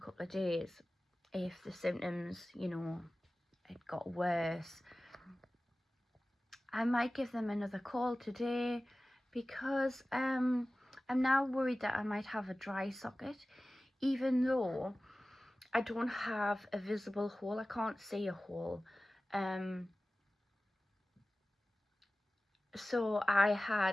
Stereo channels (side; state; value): both; normal; correlation 0.96